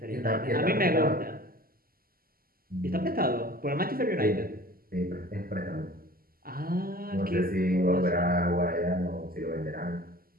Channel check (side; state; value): left; late; 0.42 ms